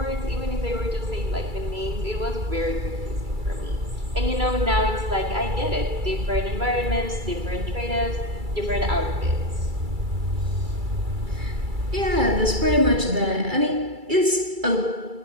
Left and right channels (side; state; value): left; late; 2.3 ms